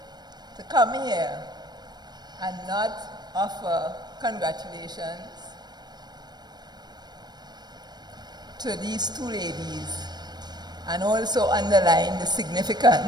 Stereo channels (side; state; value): left; late; 0.20 ms